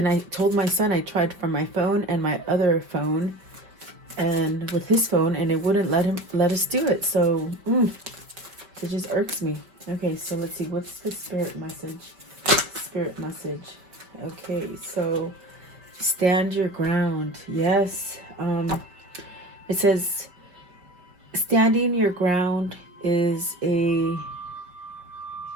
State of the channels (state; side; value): late; left; 5.2 ms